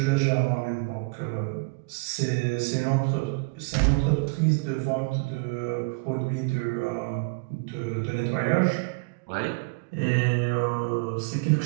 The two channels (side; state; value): left; quieter; 29.8 dB